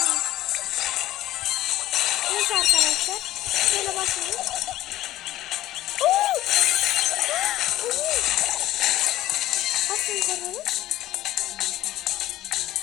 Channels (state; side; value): quieter; right; 15.0 dB